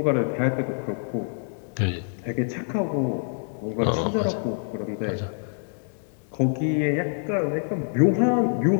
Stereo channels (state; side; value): silent; right; 61 dB below the other